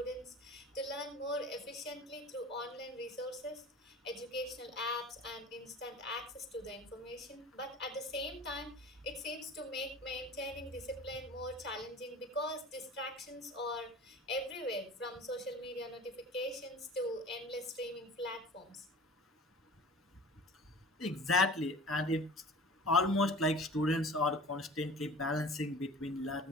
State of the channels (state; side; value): normal; both; correlation 0.41